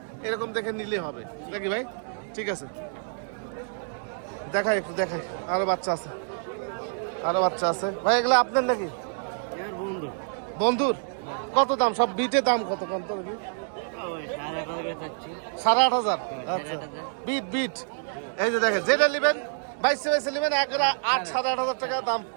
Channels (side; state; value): left; silent; digital silence